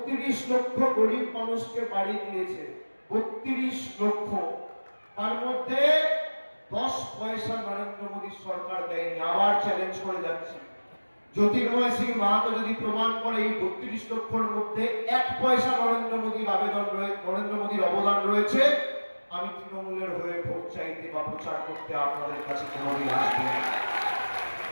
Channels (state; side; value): inverted; both; correlation -1.00